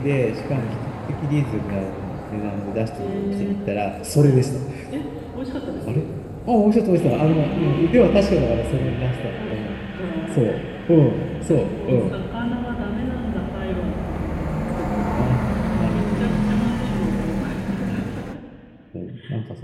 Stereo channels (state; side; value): identical; both; correlation 1.00